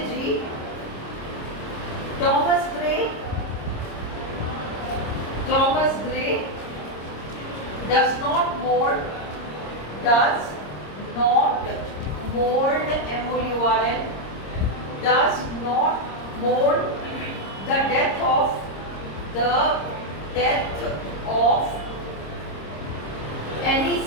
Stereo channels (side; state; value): right; late; 26 ms